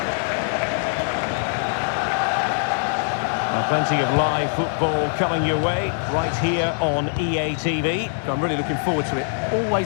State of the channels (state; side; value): silent; right; digital silence